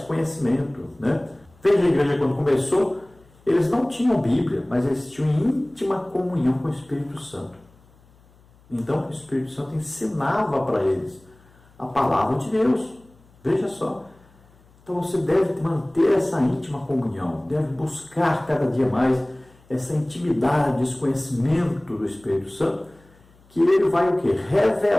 né? Veja a igreja quando começou, eles não tinham Bíblia, mas eles tinham íntima comunhão com o Espírito Santo. Então o Espírito Santo ensinava para eles a palavra de Deus. Veja só. Então você deve manter essa íntima comunhão, deve buscar cada dia mais essa intimidade, esse conhecimento do Espírito Santo, que ele vai o quê?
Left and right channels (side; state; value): left; noise; hum, 29 dB below the sound